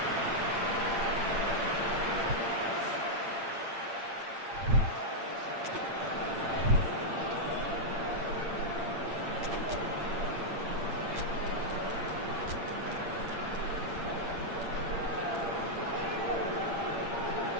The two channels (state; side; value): late; left; 8.7 ms